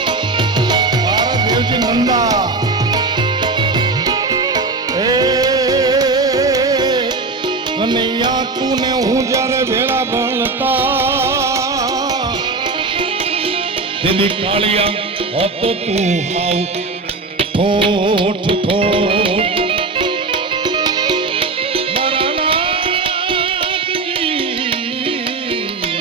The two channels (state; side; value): quieter; left; 3.7 dB